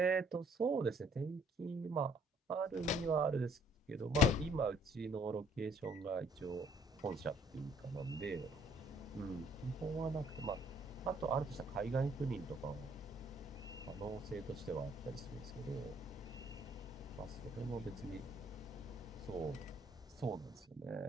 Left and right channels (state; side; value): normal; both; correlation 0.62